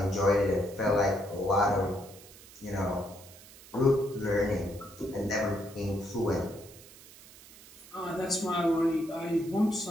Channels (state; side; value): noise; right; hiss, 20 dB below the sound